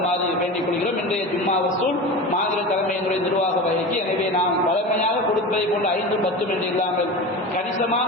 வேண்டிக் கொள்கிறோம். இன்றைய ஜும்மா வசூல் மாநில தலைமையினுடைய நிர்வாக வகைக்கு. எனவே நாம் வழமையாக கொடுப்பதை போன்ற 5, 10 என்று இல்லாமல் கணிசமான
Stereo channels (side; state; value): both; normal; correlation 0.29